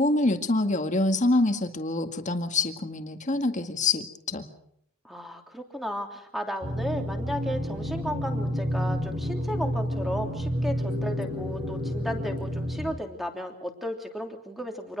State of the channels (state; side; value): normal; both; correlation 0.69